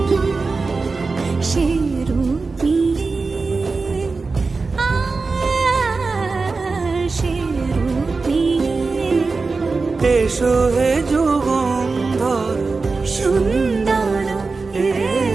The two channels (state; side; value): quieter; left; 4.1 dB